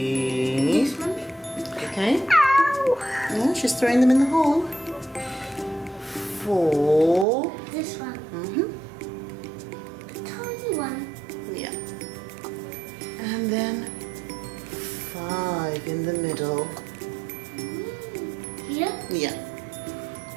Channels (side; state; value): left; drops out; at 7.2 s